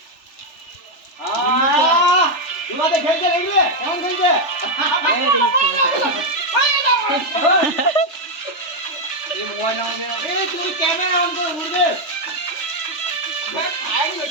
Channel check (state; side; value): late; right; 3.4 ms